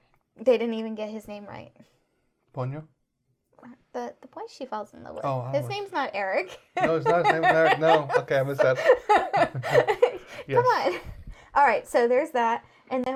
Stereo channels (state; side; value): identical; both; correlation 1.00